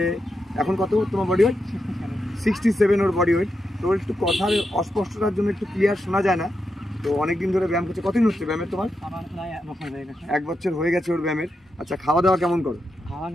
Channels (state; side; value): normal; both; correlation 0.86